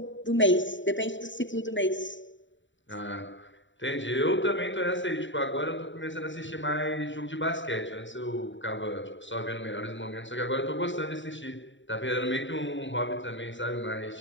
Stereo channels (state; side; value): late; right; 0.54 ms